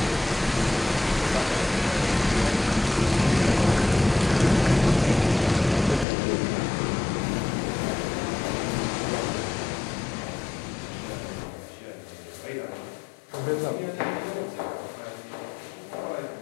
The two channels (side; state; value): right; drops out; at 6.1 s